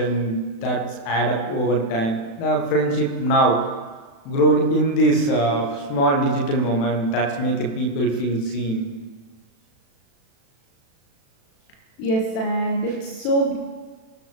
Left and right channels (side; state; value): right; late; 36 ms